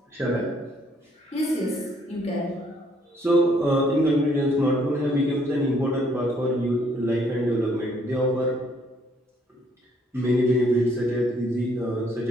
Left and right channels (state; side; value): normal; both; correlation 0.66